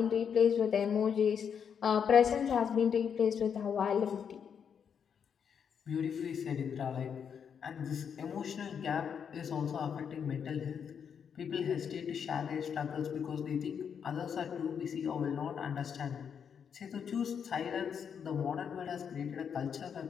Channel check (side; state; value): right; quieter; 7.4 dB